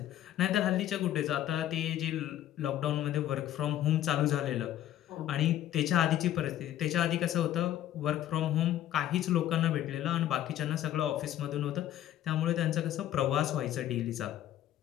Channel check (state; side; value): quieter; right; 12.4 dB